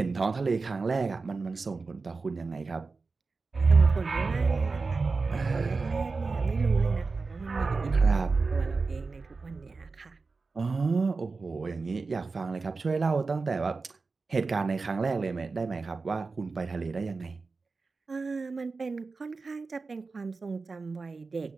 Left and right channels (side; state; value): left; quieter; 4.1 dB